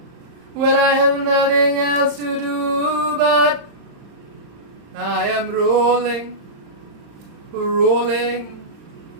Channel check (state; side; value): late; left; 35 ms